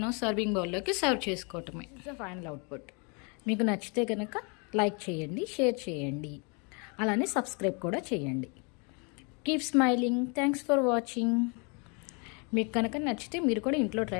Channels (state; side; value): quieter; right; 33.6 dB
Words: సర్వింగ్ బౌల్లోకి సర్వ్ చేసుకోవటమే. Final output. మీకు నచ్చితే కనుక లైక్ చేయండి, షేర్ చేయండి, అలానే సబ్స్క్రైబ్ కూడా చేయండి. Keep smiling. Thanks for watching. మీకు కనుక నచ్చితే మీరు కూడా ఇంట్లో